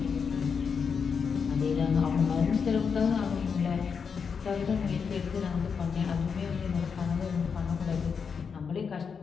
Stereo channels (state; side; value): quieter; right; 6.1 dB